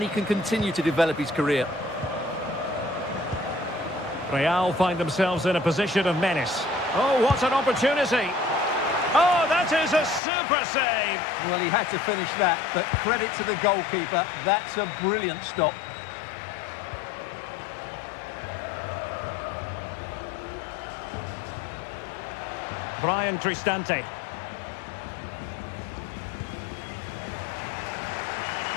he can continue to develop his career. Real find themselves in a position of menace. Oh, what an opportunity! Oh, that is a super save! Well, he had to finish that, but credit to the goalkeeper. That's a brilliant stop. Brian Cristante.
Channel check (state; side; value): drops out; right; at 10.2 s